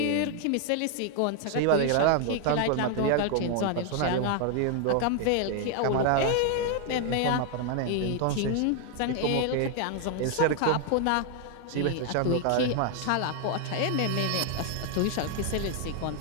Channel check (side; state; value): both; different; correlation 0.00